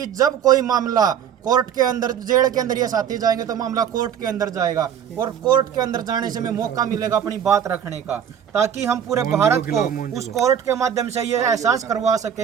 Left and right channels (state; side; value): quieter; left; 8.7 dB